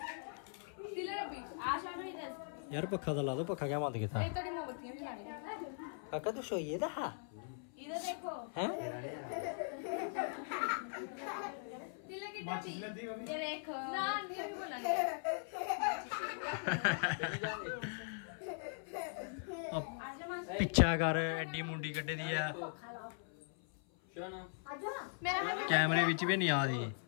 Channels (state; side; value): silent; right; 51 dB below the other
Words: यार पक्खा तो ला दो पक्खा क्या बंद किया काका तू सोइए था हैं पिछा कर एडी मुंडी कड्डी दी है कैमरे विच भी नहीं आ रही